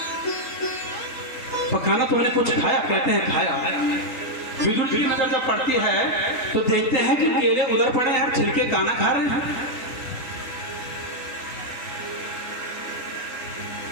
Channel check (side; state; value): right; late; 3.6 ms